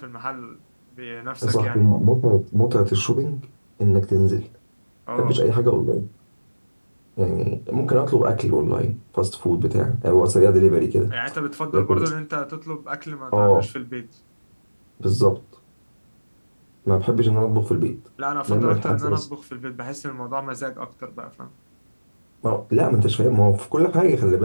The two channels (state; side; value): inverted; both; correlation -1.00